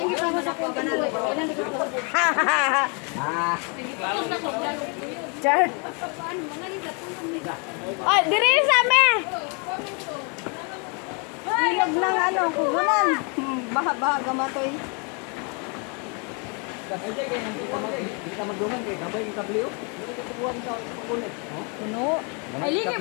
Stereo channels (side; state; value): right; quieter; 35.0 dB